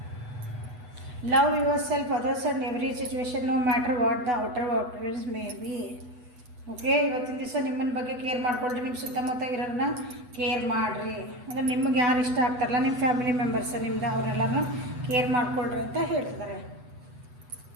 Love yourself, others and every situation, no matter what the outer appearance may be. Okay, ಇವತ್ತಿನ ದಿವಸ ನಿಮ್ಮನ್ನ ಬಗ್ಗೆ ಕೇರ್ ಮಾಡ್ಕೊಳ್ರಿ. ನಿಮ್ಮ ಸುತ್ತಮುತ್ತ ಇರೋರನ್ನ ಕೇರ್ ಮಾಡಿರಿ. ಅಂದರೆ ನಿಮಗೆ ಯಾರು ಇಷ್ಟ ಆಗ್ತಾರಲ್ಲ, ನಿಮ್ಮ ಫ್ಯಾಮಿಲಿ ಮೆಂಬರ್ಸ್ ನಿಮ್ದು, ಅವರೆಲ್ಲರೂ ಕೇರ್ ಮಾಡ್ಕೊಳ್ರಿ ಅಂತ ಹೇಳ್ತಿದ್ದಾರೆ.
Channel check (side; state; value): left; late; 8.1 ms